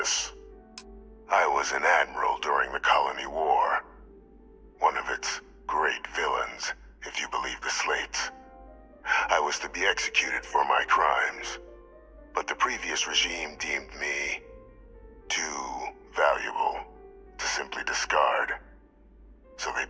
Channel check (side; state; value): both; identical; correlation 1.00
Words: I was an admiral during the Colony War. One of its great villains, if you believe the slates. I was to be executed for my crimes, but the previous regime deemed me too valuable to simply discard. So they